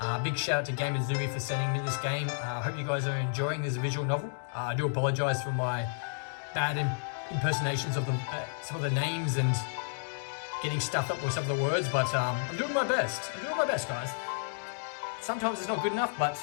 Big shout out to Gamuzumi for sending me this game. I hope you guys are enjoying this visual novel. I do apologize for my bad impersonations of some of the names and getting stuffed up with some of the words, but I'm doing my best. I'm doing my best, guys. Sometimes it's not good enough, but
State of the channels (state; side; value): silent; right; digital silence